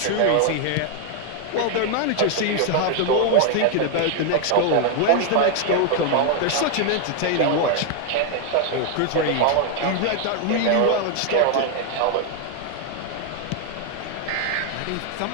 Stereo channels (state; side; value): different; both; correlation 0.00